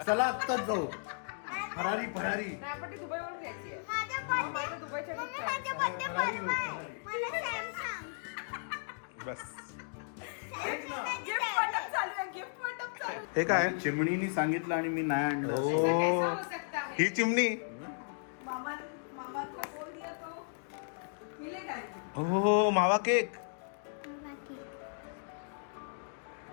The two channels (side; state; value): right; silent; digital silence